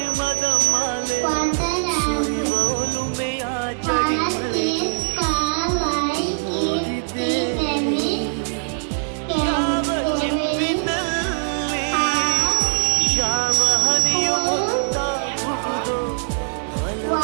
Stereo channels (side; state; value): left; silent; 58 dB below the other